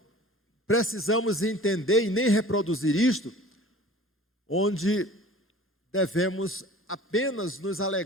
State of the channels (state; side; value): normal; both; correlation 0.42